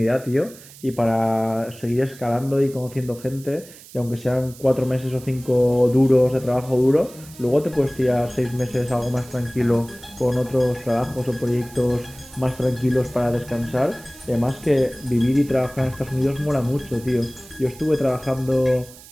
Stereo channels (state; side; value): noise; right; hiss, 20 dB below the sound